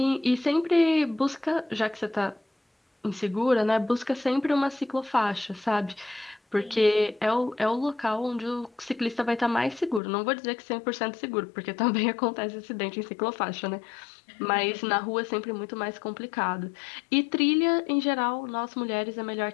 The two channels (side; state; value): right; drops out; at 10.0 s